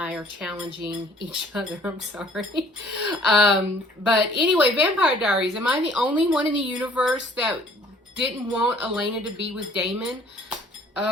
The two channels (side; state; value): both; normal; correlation 0.56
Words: are challenging each other. I'm sorry. But anyway, Vampire Diaries. Am I the only one in the universe that didn't want Elena to be with Damon?